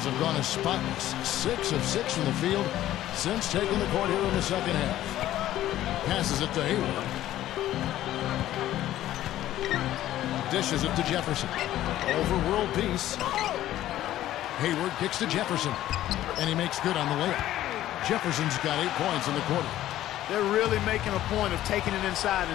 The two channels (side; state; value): right; quieter; 13.5 dB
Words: have gone as spotless. 6 of 6 from the field since taking the court here in the second half. Passes it to Hayward. Dishes it to Jefferson. Overworld piece. Hayward kicks to Jefferson. And he makes good on the layup. Jefferson's got 8 points in the quarter. They're really making a point of taking it inside